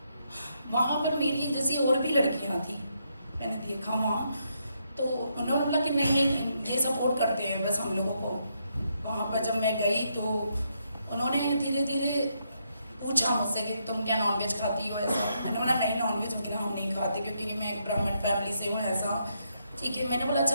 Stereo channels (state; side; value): inverted; both; correlation -0.78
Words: वहाँ पर मेरी जैसी और भी लड़कियाँ थी, मैंने देखा वहाँ। तो उन्होंने बोला कि नहीं, ये सपोर्ट करते हैं बस हम लोगों को। वहाँ पर जब मैं गई तो उन्होंने धीरे धीरे पूछा मुझसे कि तुम क्या नॉनवेज खाती हो, ऐसा। मैंने बोला नहीं, नॉनवेज वगैरह हम नहीं खाते, क्योंकि मैं एक ब्राह्मण फैमिली से हूँ, ऐसा। ठीक है, मैंने बोला